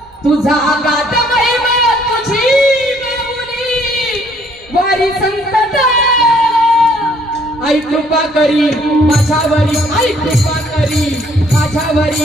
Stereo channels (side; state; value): both; normal; correlation 0.63